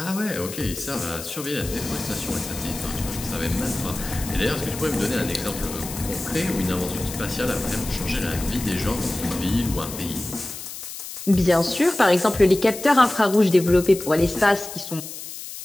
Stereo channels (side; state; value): left; noise; hiss, 10 dB below the sound